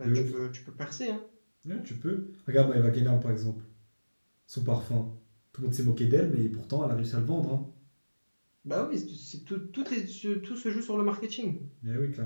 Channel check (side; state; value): both; inverted; correlation -1.00